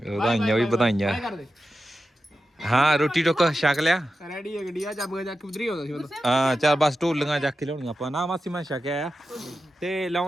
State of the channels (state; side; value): normal; both; correlation 0.91